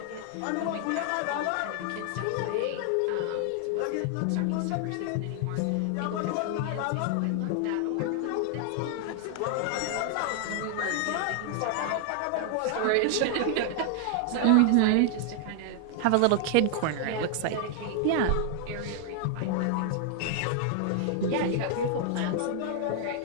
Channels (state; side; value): different; both; correlation 0.00